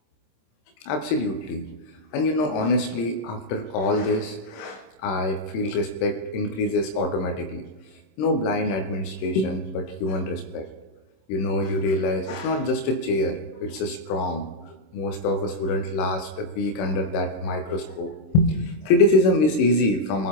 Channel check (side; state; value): right; late; 26 ms